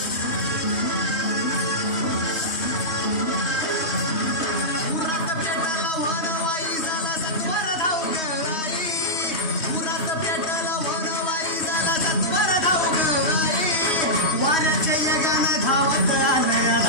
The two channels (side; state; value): right; late; 3.1 ms